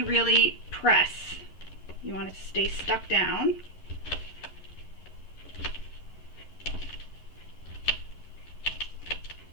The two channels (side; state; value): right; late; 11 ms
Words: really press. You want it to stay stuck down.